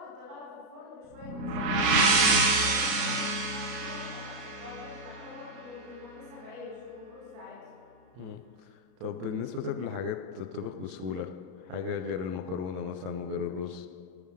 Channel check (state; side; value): late; left; 33 ms